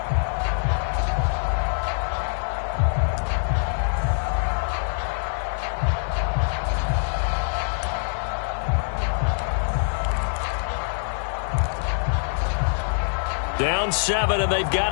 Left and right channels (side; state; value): right; silent; 56 dB below the other